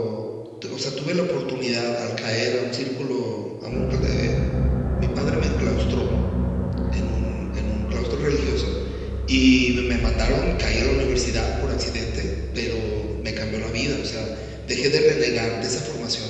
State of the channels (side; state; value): both; identical; correlation 1.00